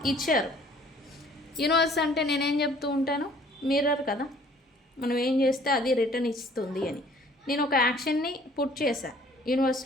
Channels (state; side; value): normal; both; correlation 0.56